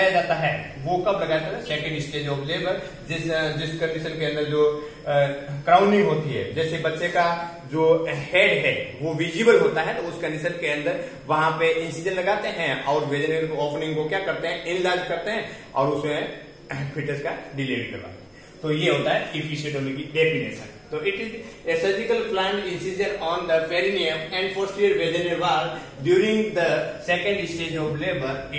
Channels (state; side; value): identical; both; correlation 1.00